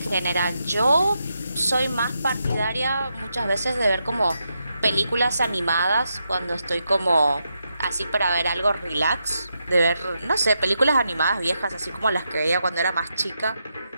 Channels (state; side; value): inverted; both; correlation -0.84